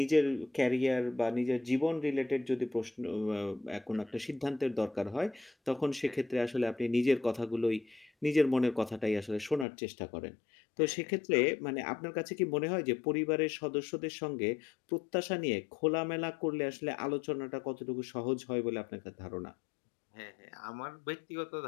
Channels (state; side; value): drops out; right; at 9.7 s